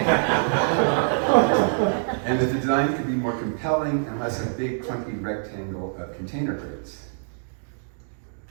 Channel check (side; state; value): left; silent; digital silence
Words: And the design could be more compelling and less a big, clunky rectangle of container crates.